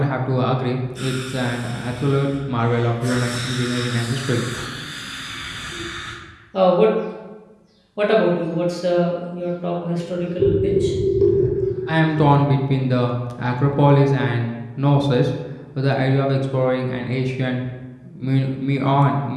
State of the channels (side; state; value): both; identical; correlation 1.00